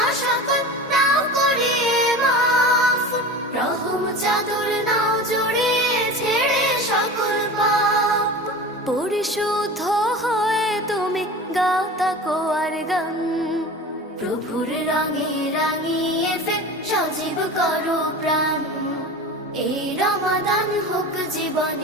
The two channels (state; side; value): normal; both; correlation 0.33